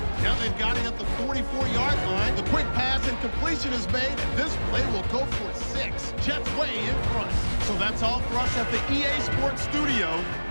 Now they've got it at the 44-yard line. The quick pass and completion is made, and this play will go for 6. Jets way in front. So that's all for us at the EA Sports Studio.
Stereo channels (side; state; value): both; inverted; correlation -1.00